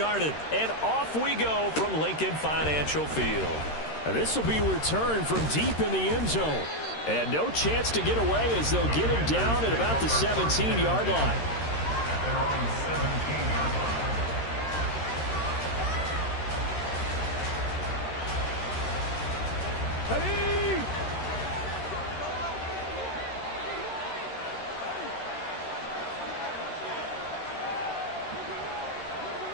And off we go from Lincoln Financial Field. This will be returned from deep in the end zone. And no chance to get away as they'll get him down at about the 17-yard line. They're on the 17-yard line. Ready?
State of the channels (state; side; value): late; right; 13 ms